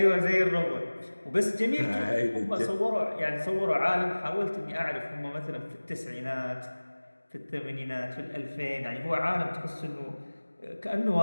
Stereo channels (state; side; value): inverted; both; correlation -1.00